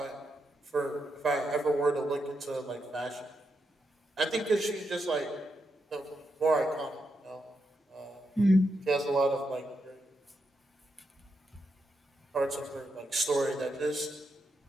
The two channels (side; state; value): both; normal; correlation 0.83